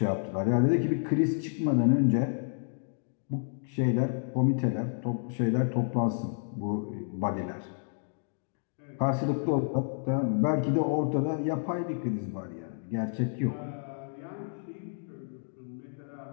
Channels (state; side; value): silent; right; digital silence